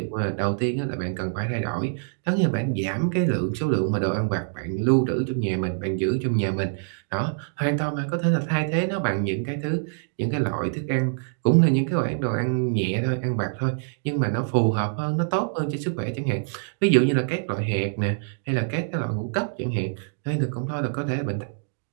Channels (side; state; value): left; silent; digital silence